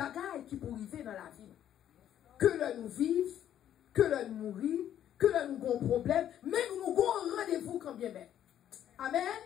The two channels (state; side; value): quieter; right; 10.7 dB